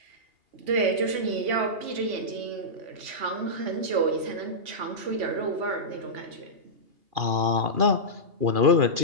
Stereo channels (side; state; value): left; late; 2.8 ms